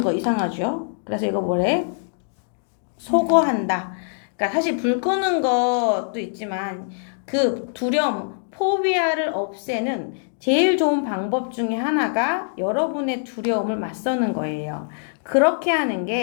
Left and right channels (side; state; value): right; silent; digital silence